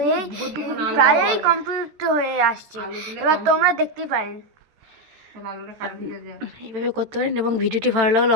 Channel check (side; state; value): left; late; 13 ms